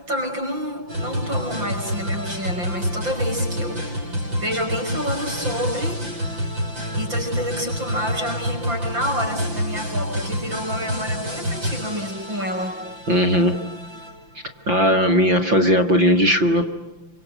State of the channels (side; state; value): left; late; 5.8 ms